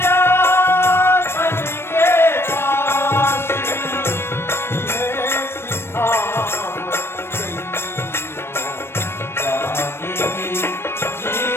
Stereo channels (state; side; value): late; right; 0.12 ms